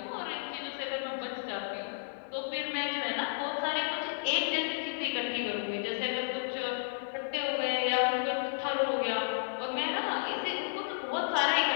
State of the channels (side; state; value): right; silent; digital silence